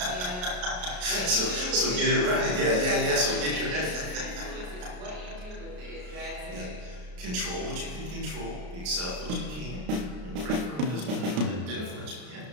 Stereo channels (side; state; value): left; late; 33 ms